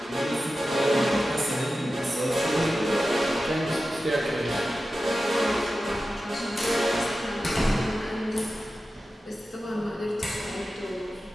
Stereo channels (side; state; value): both; normal; correlation 0.93